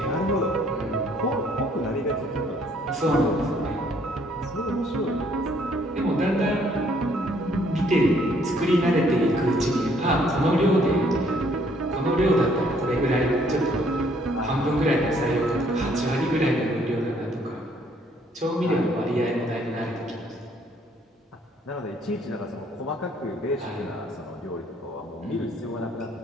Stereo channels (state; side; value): normal; both; correlation 0.64